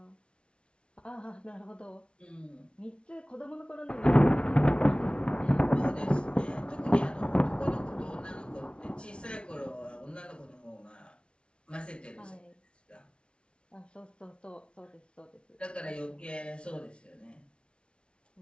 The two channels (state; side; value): late; right; 0.058 ms